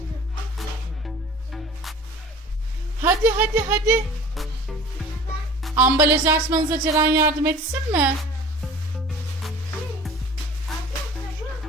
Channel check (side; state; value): both; normal; correlation 0.43